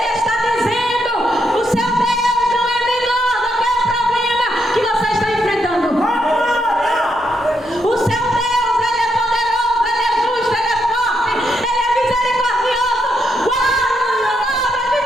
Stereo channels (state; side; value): normal; both; correlation 0.79